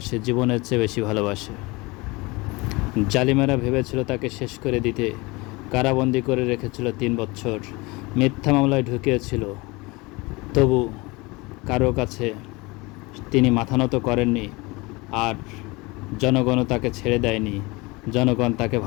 জীবনের চেয়ে বেশি ভালোবাসে। জালিমেরা ভেবেছিল তাকে শেষ করে দিতে, কারাবন্দি করে রেখেছিল 3 বছর, মিথ্যা মামলায় ঢুকিয়েছিল। তবু কারো কাছে তিনি মাথা নত করেননি, আর জনগণও তাকে ছেড়ে দেয়নি। জনগণ তাকে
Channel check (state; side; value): quieter; right; 24.4 dB